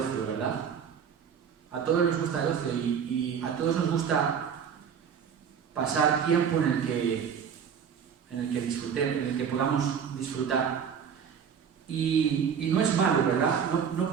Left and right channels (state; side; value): quieter; left; 7.4 dB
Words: ¿verdad? A todos nos gusta el ocio y a todos nos gusta pasar tiempo en el que disfrutemos, en el que podamos disfrutar. Y no es malo, ¿verdad?